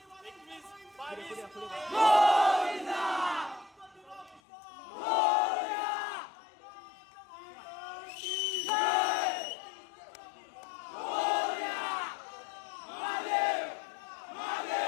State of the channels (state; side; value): drops out; right; at 4.4 s